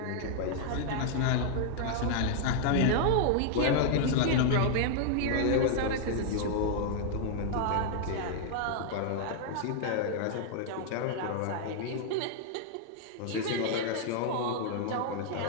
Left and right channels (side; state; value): both; different; correlation -0.01